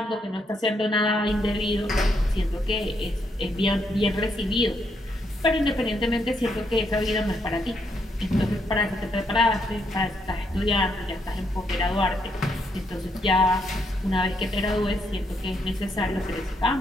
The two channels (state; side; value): normal; both; correlation 0.76